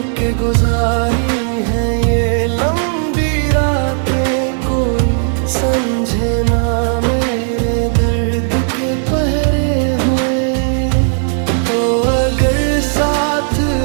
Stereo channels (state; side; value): silent; left; digital silence